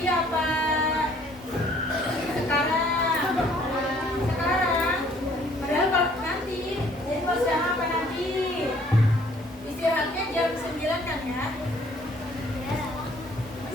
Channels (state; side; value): normal; both; correlation 0.59